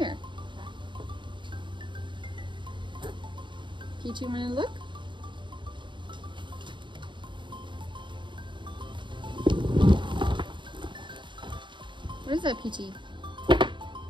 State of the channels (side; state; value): left; late; 0.23 ms